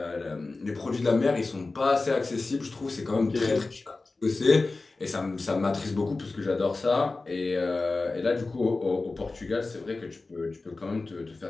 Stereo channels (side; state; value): right; quieter; 3.5 dB